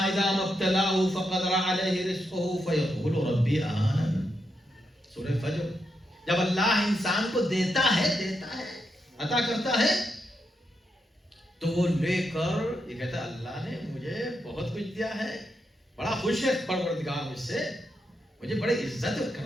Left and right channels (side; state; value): both; normal; correlation 0.83